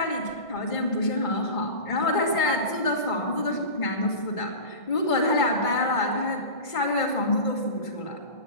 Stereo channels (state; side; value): late; right; 1.5 ms